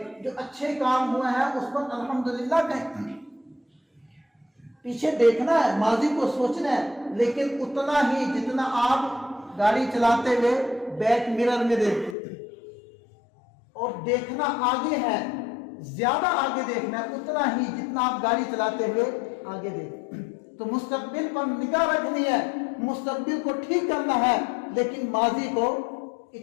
جو اچھے کام ہوئے ہیں اس پر الحمدللہ کہیں. پیچھے دیکھنا ہے، ماضی کو سوچنا ہے، لیکن اتنا ہی جتنا آپ گاڑی چلاتے ہوئے بیک مرر میں دیکھتے، اور دیکھنا آگے ہے زیادہ آگے دیکھنا ہے، اتنا ہی جتنا آپ گاڑی چلاتے ہوئے آگے دیکھیں۔ تو مستقبل پر نگاہ رکھنی ہے، مستقبل کو ٹھیک کرنا ہے، لیکن ماضی کو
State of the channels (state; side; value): drops out; right; at 12.2 s